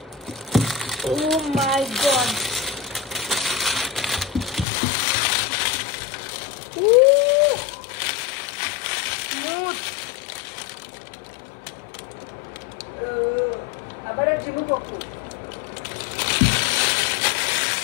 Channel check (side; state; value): right; drops out; at 4.7 s